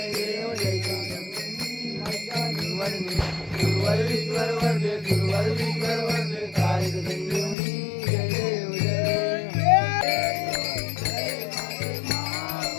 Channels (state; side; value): drops out; right; at 7.6 s